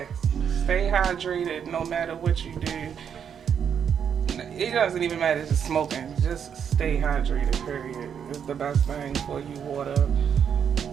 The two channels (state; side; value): quieter; left; 7.8 dB